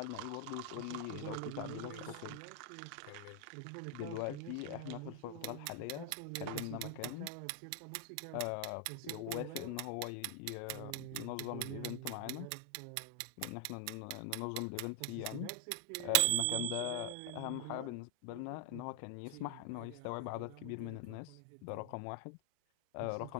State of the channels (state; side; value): different; both; correlation 0.00